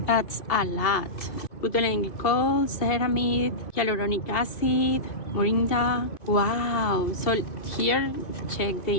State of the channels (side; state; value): right; late; 2.7 ms